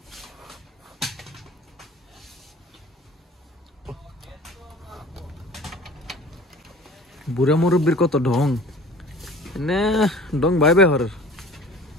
বুড়া মুরব্বীর কত ঢং না, ঢং ভাই ভাই হর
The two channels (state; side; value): normal; both; correlation 0.45